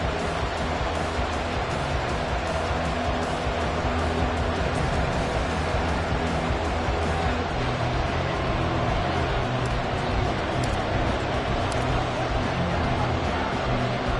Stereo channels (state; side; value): identical; both; correlation 1.00